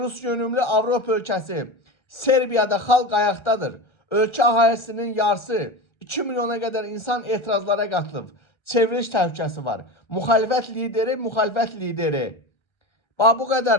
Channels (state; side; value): late; right; 1.4 ms